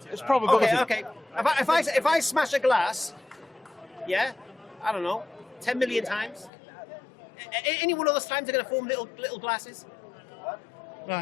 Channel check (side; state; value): right; drops out; at 6.5 s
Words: it's probability. Okay. If I smash a glass, yeah, I don't know, 10 million times. Any one of those times are going to form little glasses.